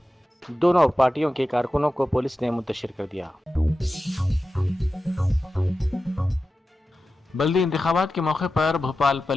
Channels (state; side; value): normal; both; correlation 0.93